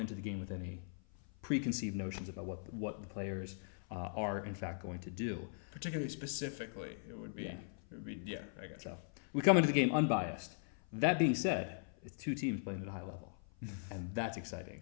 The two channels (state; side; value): silent; right; 51 dB below the other